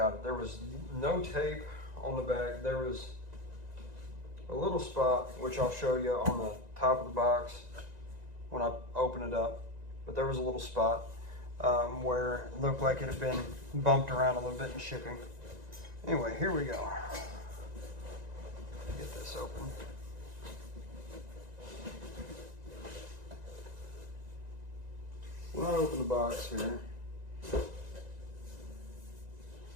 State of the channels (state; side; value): late; left; 1.9 ms